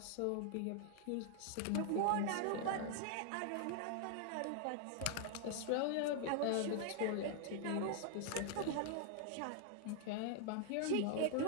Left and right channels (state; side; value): different; both; correlation 0.00